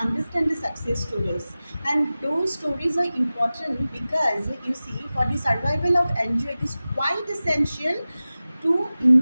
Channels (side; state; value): both; inverted; correlation -0.96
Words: the success stories, and those stories are important because you see, for the survival of NGO it is quite essential to